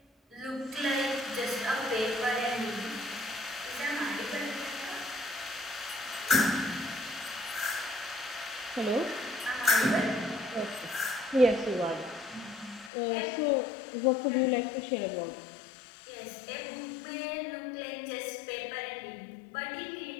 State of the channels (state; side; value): drops out; right; at 12.9 s